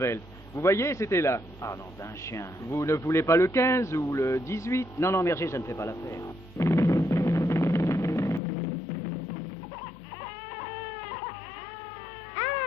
Vous voyez, c'était là. Ah non, d'un chien. Vous ne voulez pas le 15 ou le 18? Non, non, merci, ça ne fait pas l'affaire.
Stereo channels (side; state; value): right; drops out; at 8.4 s